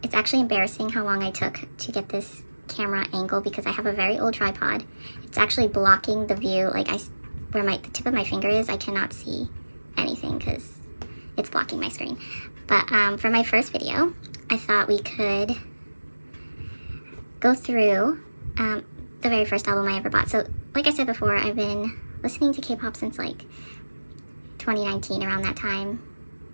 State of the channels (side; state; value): both; inverted; correlation -1.00